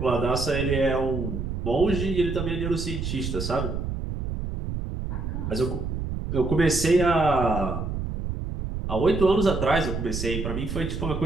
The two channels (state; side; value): noise; right; rumble, 4 dB below the sound